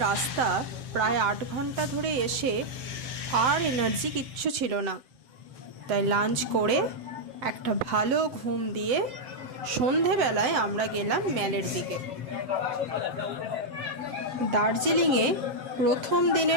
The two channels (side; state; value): left; late; 7.8 ms